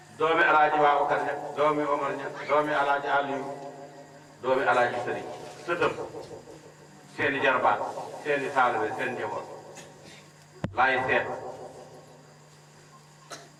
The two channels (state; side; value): identical; both; correlation 1.00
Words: doomi alaaji Babacar ña doomi Omar ña doomi alaaji Aliou doomi alaaji Sëriñ sëtëm seeni jarbaat seeni taalibe seen njaboot laay seet